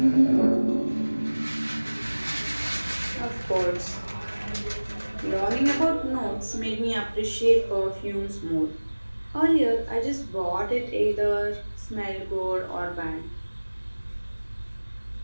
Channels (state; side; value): inverted; both; correlation -1.00